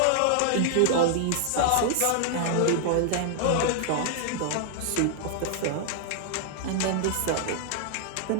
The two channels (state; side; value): different; both; correlation 0.00